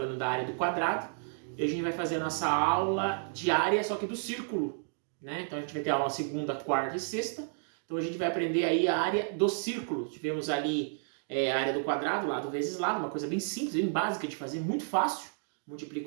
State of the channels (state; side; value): silent; left; digital silence